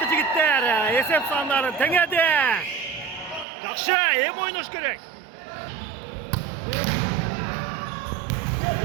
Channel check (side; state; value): left; drops out; at 3.5 s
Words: жігіттер, есеп сандары теңеді. Жақшы, ойнаш керек.